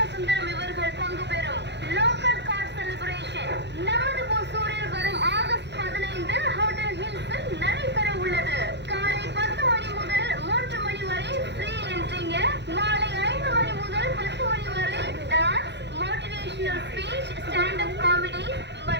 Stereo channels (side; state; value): left; late; 0.50 ms